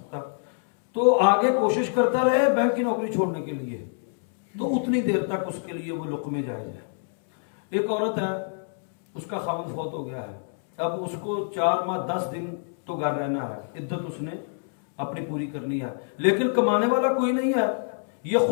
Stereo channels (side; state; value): right; silent; 61 dB below the other